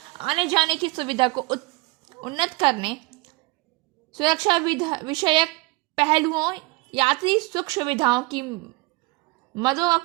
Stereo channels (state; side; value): quieter; left; 23.7 dB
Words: आने जाने की सुविधा को उन्नत करने, सुरक्षा विषयक पहलुओं, यात्री सुख सुविधाओं की मदों